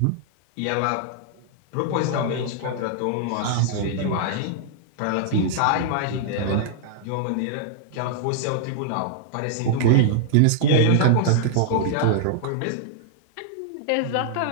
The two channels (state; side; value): different; both; correlation -0.01